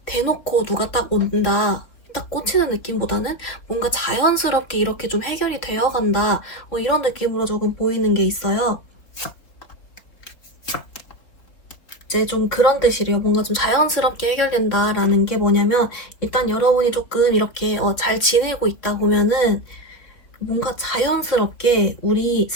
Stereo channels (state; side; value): late; right; 3.7 ms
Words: 대놓고 누가 딱 온다. 딱 꽂히는 느낌보다는 뭔가 자연스럽게 이렇게 좀 해결이 되어 간다. 이런 느낌으로 조금 보이는 게 있어요. 이제 좀 그런 뜻이래요. 뭔가 좀 자연스럽게 해결된다라는 게 뭐냐면 일단 여러분이 조금 이렇게 잘 지내고 있다 보면은 뭔가 자연스럽게 우리